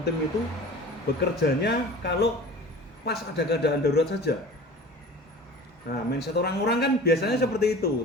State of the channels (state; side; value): normal; both; correlation 0.40